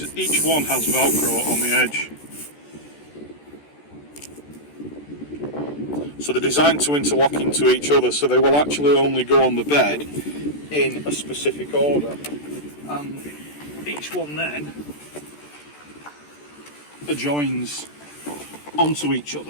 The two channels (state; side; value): late; right; 14 ms